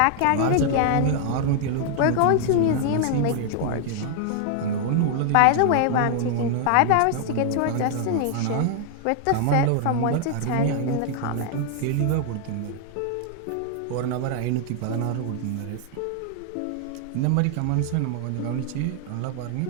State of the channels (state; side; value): different; both; correlation 0.00